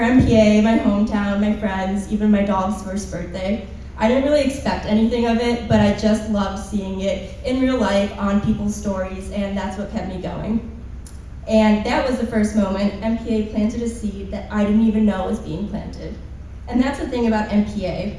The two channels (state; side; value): identical; both; correlation 1.00